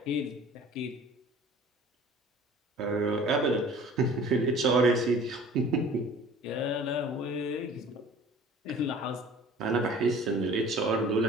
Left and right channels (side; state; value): both; normal; correlation 0.47